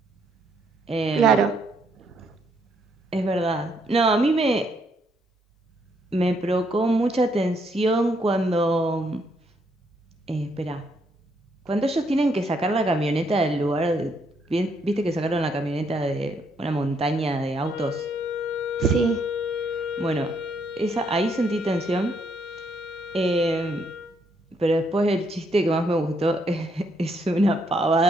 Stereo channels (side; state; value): both; normal; correlation 0.73